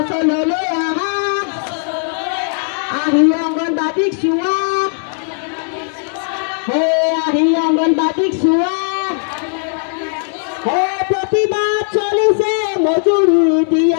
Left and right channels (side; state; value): right; silent; 68 dB below the other